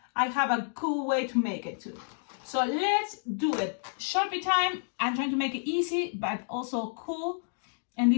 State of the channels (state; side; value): silent; right; digital silence